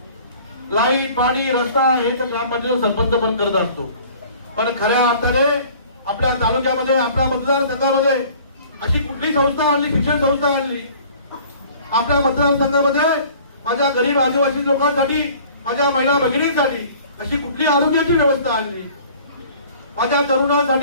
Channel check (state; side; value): inverted; both; correlation -0.49